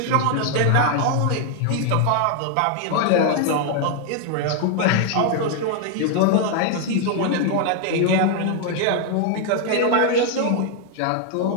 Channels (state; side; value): different; both; correlation 0.00